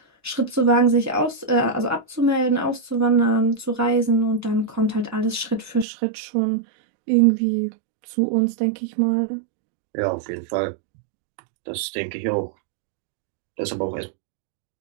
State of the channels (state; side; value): drops out; left; at 5.9 s